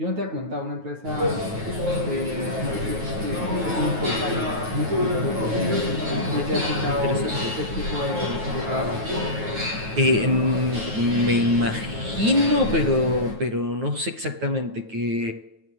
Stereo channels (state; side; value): late; left; 9.3 ms